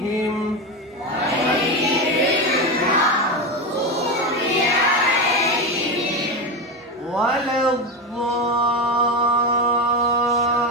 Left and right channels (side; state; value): both; normal; correlation 0.17